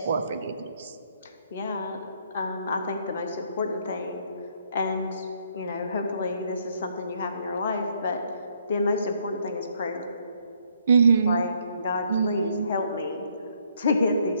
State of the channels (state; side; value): inverted; both; correlation -0.69